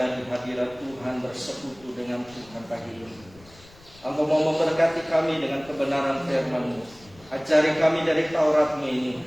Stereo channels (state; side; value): noise; left; rumble, 24 dB below the sound